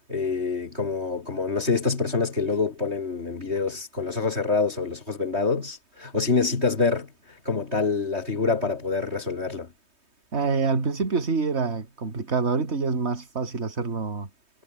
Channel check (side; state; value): left; late; 3.2 ms